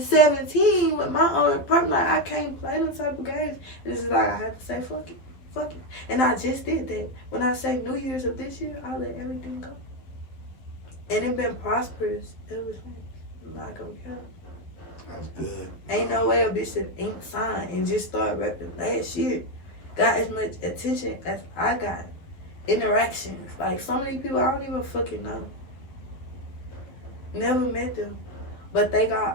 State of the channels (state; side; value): late; right; 11 ms